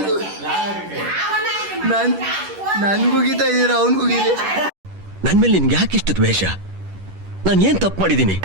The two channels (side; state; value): left; late; 11 ms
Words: ನನ್ಗುಗಿತಾ ಇದೀರ, ಅವನ್ಗುಗಿರಿ. ನನ್ ಮೇಲೆ ನಿನ್ಗೆ ಯಾಕೆ ಇಷ್ಟ ದ್ವೇಷ? ನಾನು ಏನ್ ತಪ್ಪು ಮಾಡಿದ್ದೀನಿ?